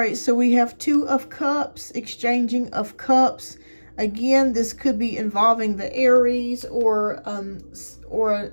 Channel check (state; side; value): inverted; both; correlation -1.00